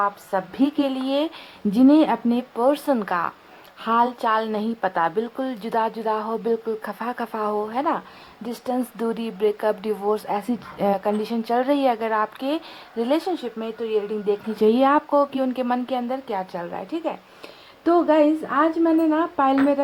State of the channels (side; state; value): both; identical; correlation 1.00